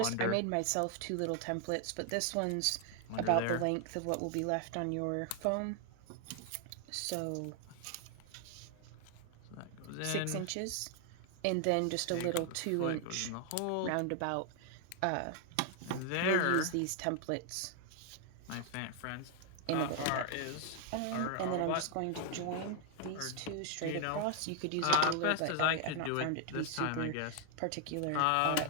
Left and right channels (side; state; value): both; different; correlation 0.00